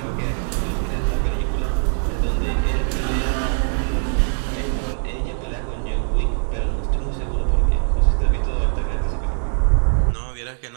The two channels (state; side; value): silent; left; 64 dB below the other